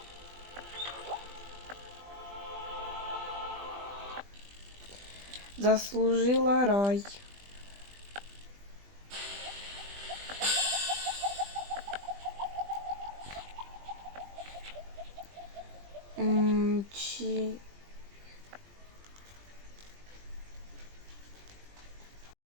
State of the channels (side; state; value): left; late; 20 ms